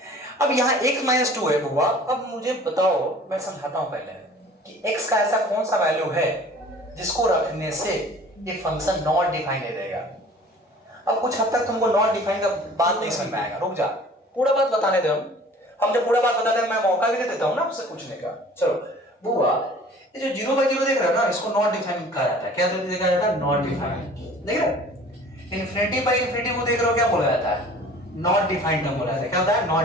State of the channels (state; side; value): normal; both; correlation 0.47